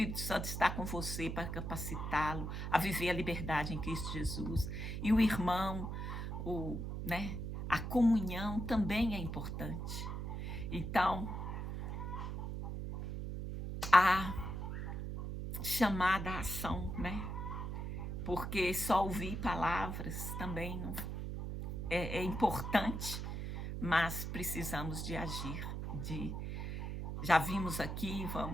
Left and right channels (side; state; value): right; noise; hum, 4 dB below the sound